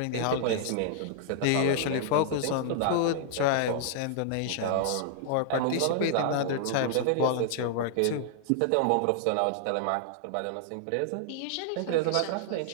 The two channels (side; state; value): both; different; correlation -0.01